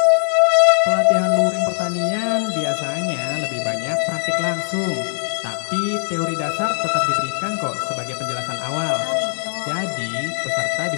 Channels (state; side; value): silent; right; digital silence